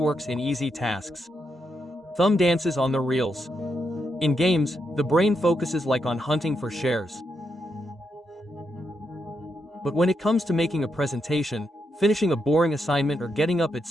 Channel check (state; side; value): normal; both; correlation 0.82